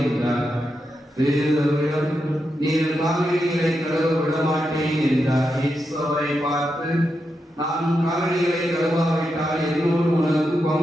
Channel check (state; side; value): normal; both; correlation 0.86